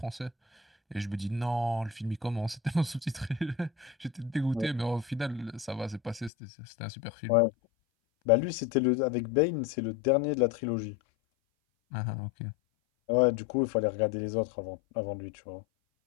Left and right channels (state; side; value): drops out; right; at 6.3 s